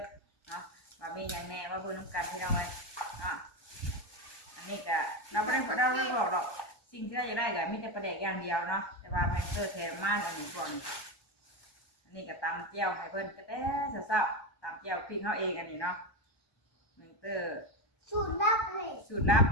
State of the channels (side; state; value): right; late; 1.2 ms